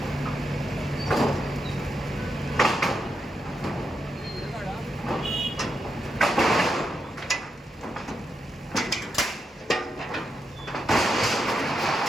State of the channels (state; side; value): normal; both; correlation 0.84